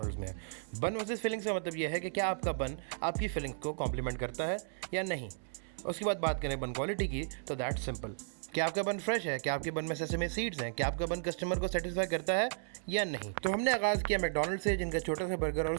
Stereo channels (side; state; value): left; silent; 55 dB below the other